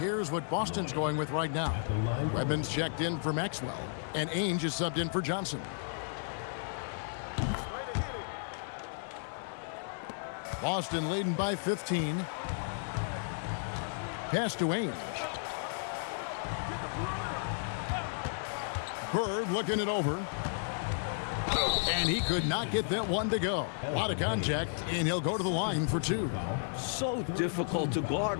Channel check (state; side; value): silent; right; digital silence